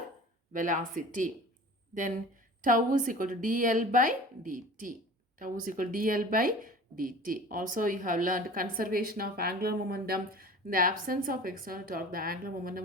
velocity. Then tau is equal to dl by dt. Tau is equal to dl by dt. Also, you have learned conservation of angular momentum. In the absence of external torque, the angular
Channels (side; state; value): both; normal; correlation 0.41